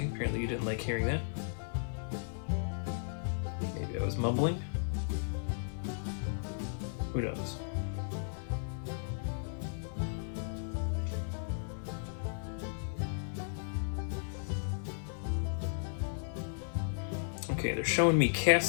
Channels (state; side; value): silent; right; digital silence